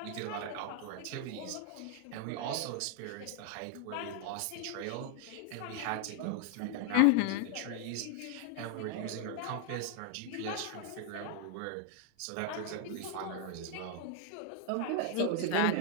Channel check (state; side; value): different; both; correlation 0.00